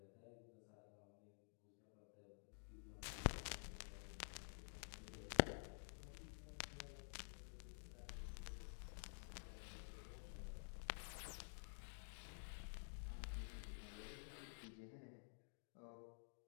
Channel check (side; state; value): right; silent; digital silence